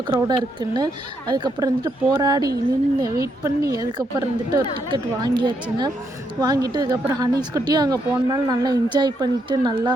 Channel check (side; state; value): both; normal; correlation 0.77